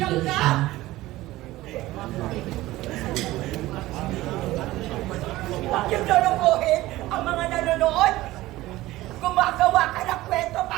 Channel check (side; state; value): left; quieter; 17.3 dB